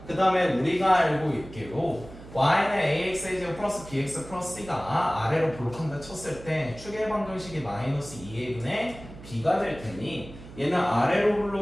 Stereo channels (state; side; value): noise; right; hum, 16 dB below the sound